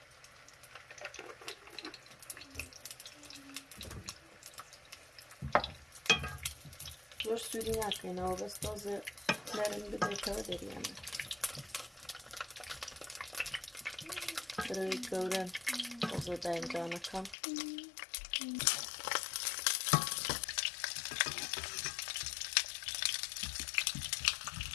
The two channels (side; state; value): right; drops out; at 17.4 s